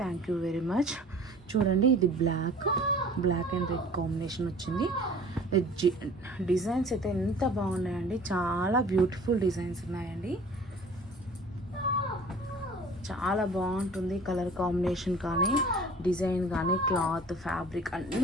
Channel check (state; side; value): normal; both; correlation 0.47